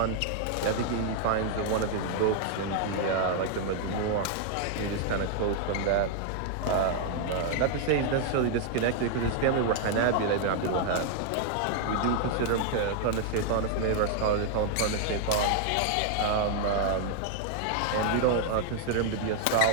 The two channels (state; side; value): different; both; correlation 0.00